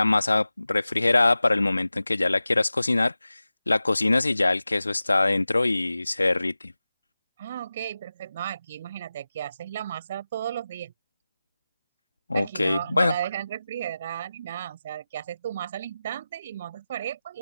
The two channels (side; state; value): both; inverted; correlation -0.94